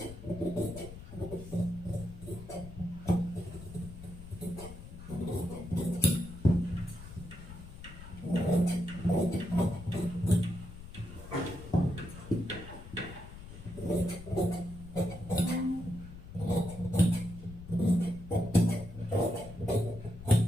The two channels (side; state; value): left; noise; rumble, 14 dB below the sound